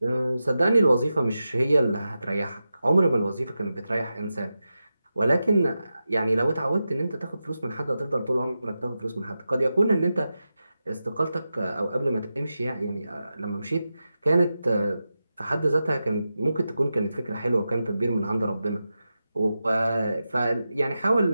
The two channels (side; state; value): both; inverted; correlation -0.91